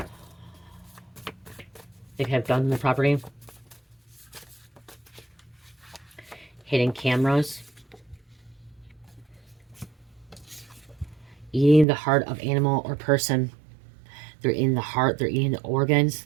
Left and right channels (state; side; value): drops out; left; at 11.9 s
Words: They have guns on the property. Hidden cameras. Eating the heart of animal or person. They're in the heart. They're eating the organs.